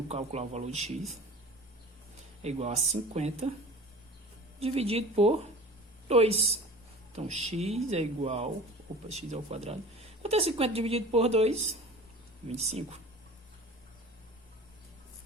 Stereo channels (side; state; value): both; normal; correlation 0.40